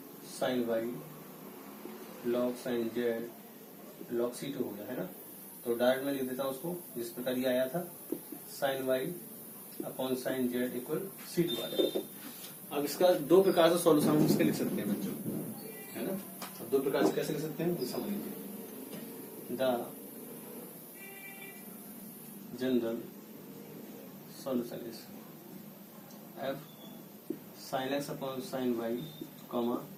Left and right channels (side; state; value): both; identical; correlation 1.00